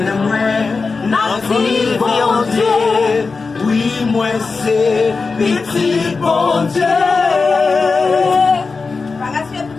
oui, moi c'est petit bon Dieu.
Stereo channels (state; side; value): quieter; right; 4.4 dB